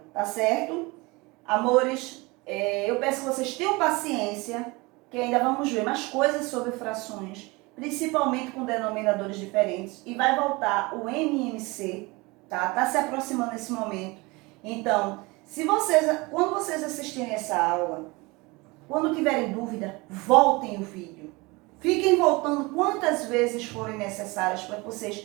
tá certo? Amores, eu peço que vocês tenham paciência, que ainda vamos ver mais coisas sobre frações, principalmente com denominadores diferentes, e vai voltar o MMC, tá? Tá se aproximando nesse momento. Então, quando vocês assistirem essa aula, quando tiverem dúvida, voltem o vídeo. Fiquem voltando quantas vezes forem necessárias para que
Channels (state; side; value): quieter; left; 24.6 dB